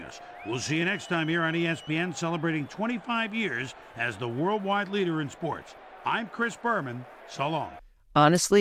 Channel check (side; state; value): both; identical; correlation 1.00